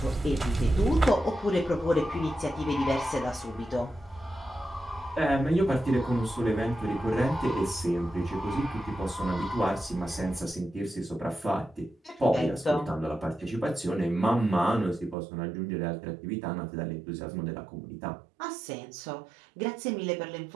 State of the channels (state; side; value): drops out; left; at 15.2 s